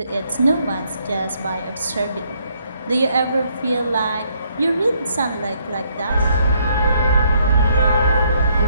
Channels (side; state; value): both; inverted; correlation -0.71